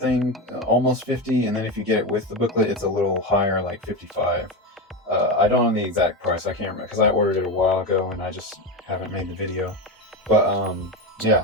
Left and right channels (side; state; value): both; normal; correlation 0.17